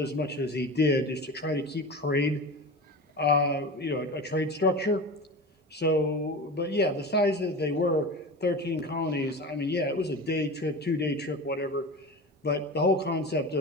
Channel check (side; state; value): both; normal; correlation 0.30